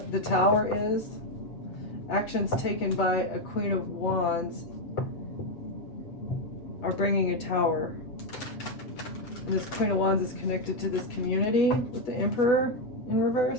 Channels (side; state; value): right; late; 7.6 ms